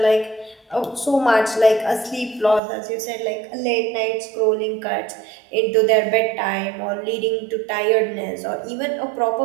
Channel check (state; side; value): drops out; left; at 2.6 s